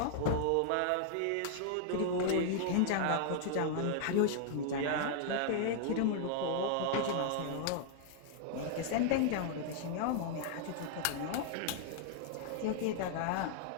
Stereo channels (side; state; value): both; different; correlation 0.00